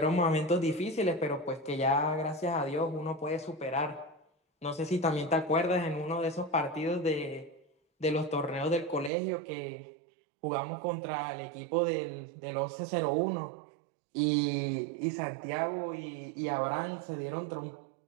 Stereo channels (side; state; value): left; drops out; at 9.1 s